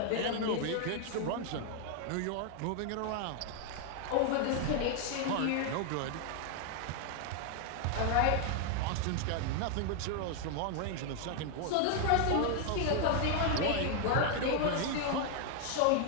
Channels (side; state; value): both; different; correlation 0.00